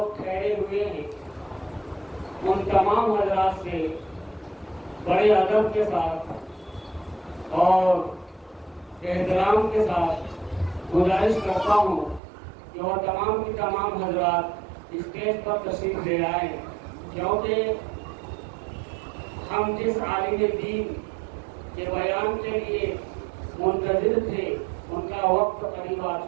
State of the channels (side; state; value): left; drops out; at 12.2 s